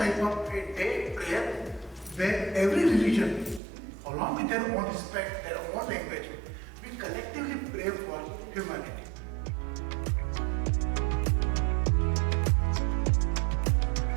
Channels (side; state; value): left; drops out; at 3.6 s